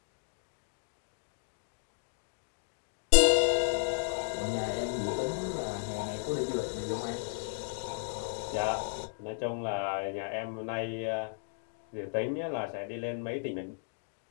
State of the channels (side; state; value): right; silent; digital silence